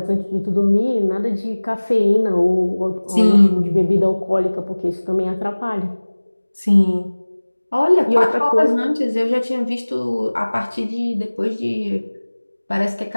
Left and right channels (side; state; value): both; inverted; correlation -1.00